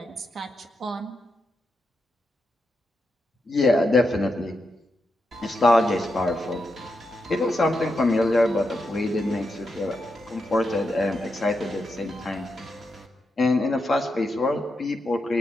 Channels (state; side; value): normal; both; correlation 0.85